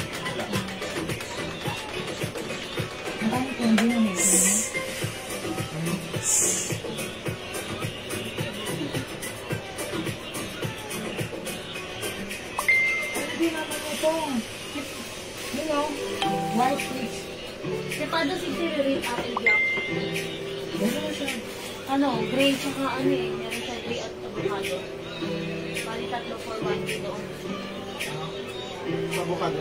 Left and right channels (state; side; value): identical; both; correlation 1.00